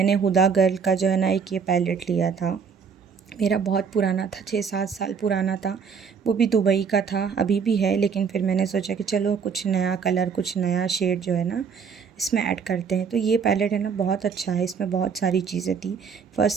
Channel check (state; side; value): quieter; left; 6.2 dB